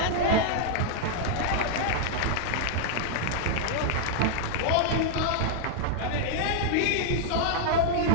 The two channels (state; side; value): different; both; correlation -0.01